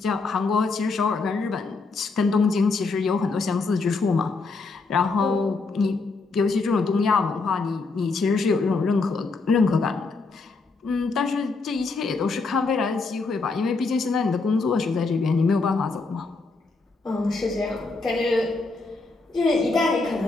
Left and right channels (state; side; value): quieter; right; 4.0 dB